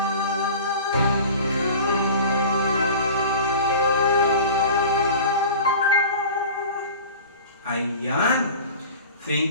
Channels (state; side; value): inverted; both; correlation -0.38